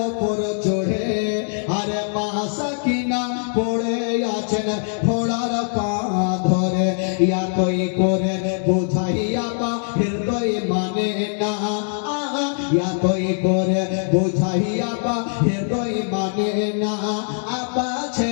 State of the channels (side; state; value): right; silent; digital silence